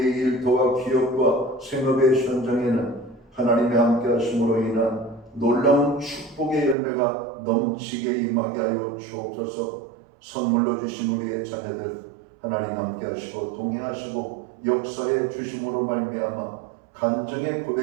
일터와 기업과 생업의 현장에는 하나님의 함께 하심으로 인한 놀라운 축복의 열매가 넘치게 임하게 하여 주옵소서. 선물로 주신 우리의 자녀들 하나님 함께 하시고 동행하시고 역사에 주심으로 말미암아 간증의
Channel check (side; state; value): left; drops out; at 6.8 s